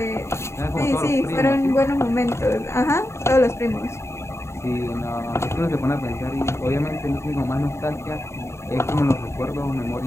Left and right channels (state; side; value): late; right; 0.13 ms